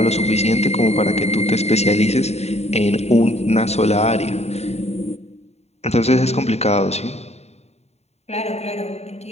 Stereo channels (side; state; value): right; late; 0.31 ms